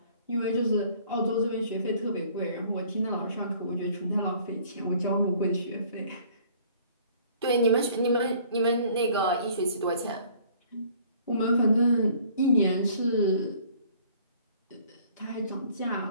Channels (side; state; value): both; inverted; correlation -0.55